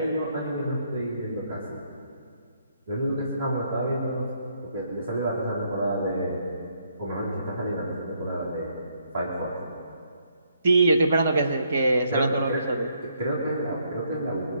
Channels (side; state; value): both; inverted; correlation -0.72